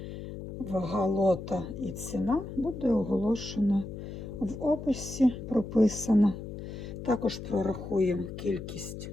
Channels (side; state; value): left; noise; hum, 9 dB below the sound